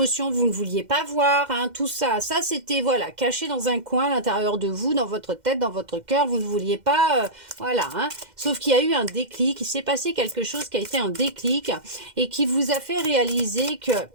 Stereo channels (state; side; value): late; left; 2.1 ms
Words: vous ne vouliez pas voir, hein, tout ça. Ça, c'était, voilà, caché dans un coin à l'intérieur de vous, dans votre tête, dans votre cœur. Vous ne vouliez pas, voilà. Hein. Sauf qu'il y a eu un déclic. Il s'est passé quelque chose qui a été un déclic et qui vous a fait réaliser qu'il